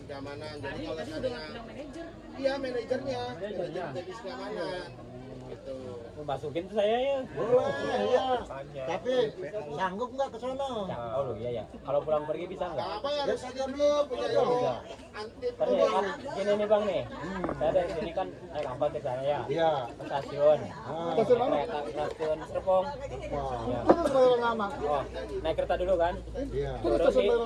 keamanan. Jadi kalau ada iya manajernya, Manajernya. divisi keamanan. Gitu. Masukin tuh saya ya. Boleh, iya. Tanya. Tapi sanggup nggak ke sono? Oh lu iya ya. Kalau pulang pergi bisa nggak? Apa ya Ya harus saja ada dulu, punya punya ilmu Bisa. anti Kan ya, kan gini nih bang nih. Saya dari sini kan naik angkot ke sana ya. Iya. Ke stasiun. Stasiun mana? Kereta stasiun Serpong. Ya. Itu kebayaran lama. Oh, naik kereta dulu kan? Iya. Itu Turun stasiun di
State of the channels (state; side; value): identical; both; correlation 1.00